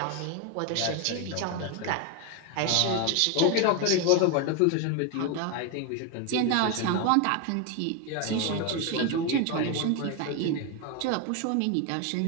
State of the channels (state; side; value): different; both; correlation 0.02